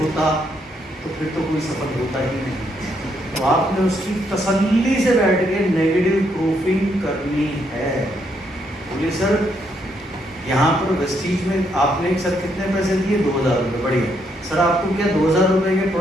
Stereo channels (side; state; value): both; normal; correlation 0.75